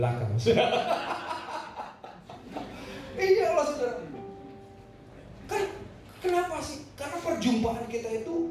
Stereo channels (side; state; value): both; identical; correlation 1.00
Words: Iya Allah, saudara. Kan kenapa sih? Karena perjumpaan kita